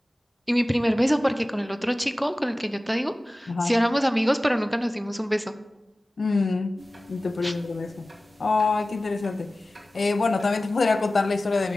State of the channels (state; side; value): normal; both; correlation 0.97